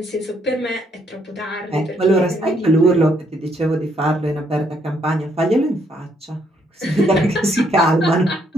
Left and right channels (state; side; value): normal; both; correlation 0.71